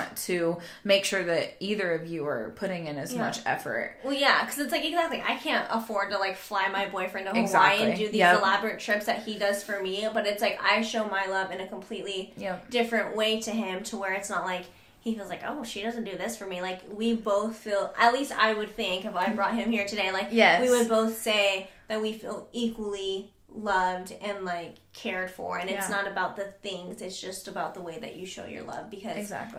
to make sure that either of you are putting in as much effort. Well, because it's like, exactly, I can't afford to like fly my boyfriend to Hawaii and do these elaborate trips that he does for me. But it's like, I show my love in a completely different way to him, to where it's not like he feels like, oh, she doesn't do this for me. Like, we both feel, at least I would think, if I brought him here today, like, we would both say that we feel equally loved and like cared for, and it's not about the things, it's just about the way that you show your love, because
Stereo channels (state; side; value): identical; both; correlation 1.00